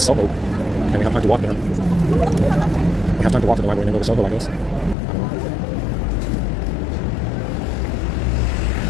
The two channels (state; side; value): drops out; right; at 5.0 s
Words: and we have time to walk there. We have time to walk to the library and then go to Soho, I guess. I don't know.